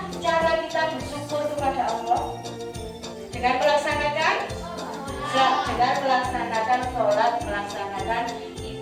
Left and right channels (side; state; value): both; identical; correlation 1.00